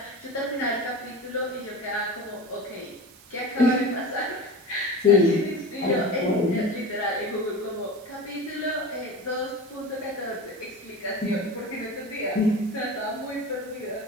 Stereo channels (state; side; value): noise; right; hiss, 23 dB below the sound